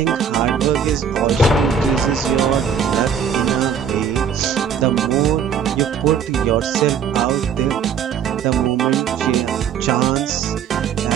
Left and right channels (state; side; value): quieter; left; 7.5 dB